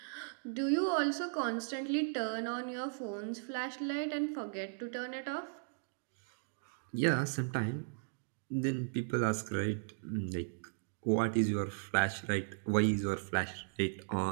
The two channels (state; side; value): silent; left; digital silence